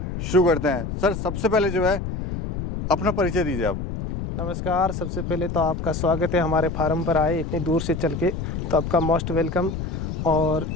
शुरू करते हैं। सर सबसे पहले जो है अपना परिचय दीजिए आप। नमस्कार, सबसे पहले तो आपका स्वागत है हमारे फार्म पर आए इतनी दूर से चल के, तो आपका मोस्ट वेलकम। और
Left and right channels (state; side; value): noise; left; rumble, 5 dB below the sound